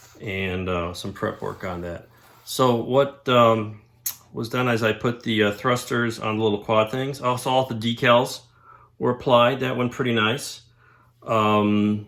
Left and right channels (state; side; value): identical; both; correlation 1.00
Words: and some prep work on that. So what was done is I put the thrusters on the little quad things. Also, all the decals were applied. That went pretty nice. Um,